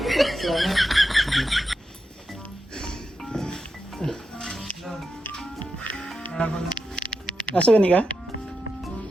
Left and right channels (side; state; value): both; normal; correlation 0.88